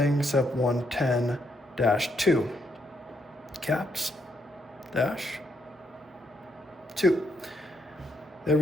except 110-2. Caps, dash, 2. There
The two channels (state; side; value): normal; both; correlation 0.77